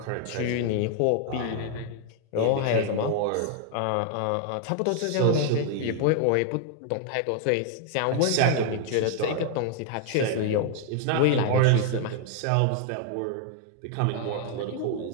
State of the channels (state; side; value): different; both; correlation 0.00